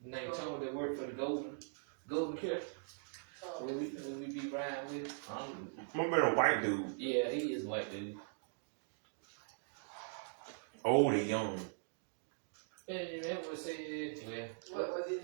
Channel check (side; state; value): left; silent; digital silence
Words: named Tony that work for the Golden Care. When we be riding with. Remember the white dude? Yeah, he is a white dude. Old and young. Yeah, you remember what said, well, What is